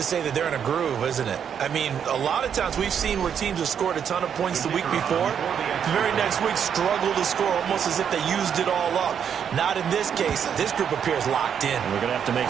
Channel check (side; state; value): left; quieter; 8.0 dB